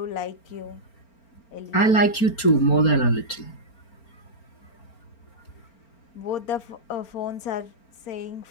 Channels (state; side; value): late; right; 4.4 ms